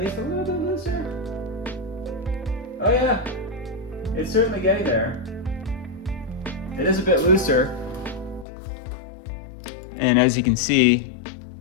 a little bit looser. Oh yeah, it's certainly getting there. It is a bit looser. And as you can see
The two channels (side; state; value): right; drops out; at 8.5 s